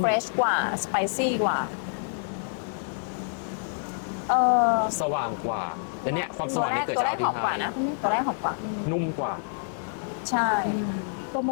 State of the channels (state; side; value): silent; right; digital silence